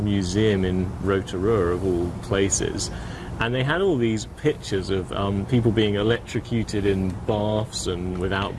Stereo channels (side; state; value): both; identical; correlation 1.00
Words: in Rotorua, of all places, and they had all these pictures of people being electrocuted in baths and without